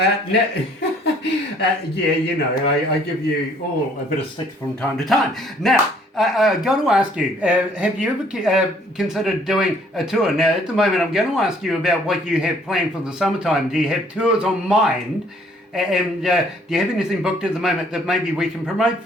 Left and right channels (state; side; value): normal; both; correlation 0.60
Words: I give you all a bit of stick from time to time. Now, I've got to ask you, have you ever considered doing a tour? Now, at the moment, I'm going to ask you about what you have planned for the summertime. Do you have tours on mind? And do you have anything booked at the moment that maybe we can promote